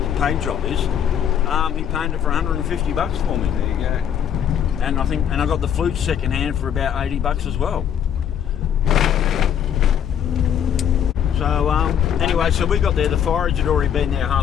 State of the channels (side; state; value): right; quieter; 9.0 dB